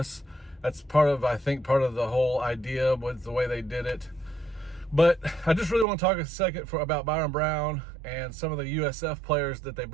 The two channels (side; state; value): left; drops out; at 5.9 s